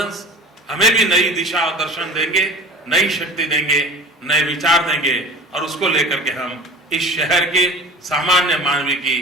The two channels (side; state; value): both; normal; correlation 0.39